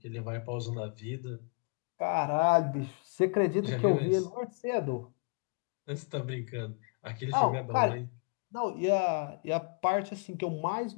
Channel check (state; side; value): quieter; right; 36.1 dB